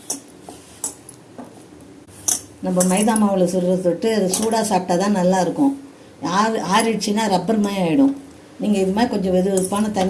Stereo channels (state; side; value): identical; both; correlation 1.00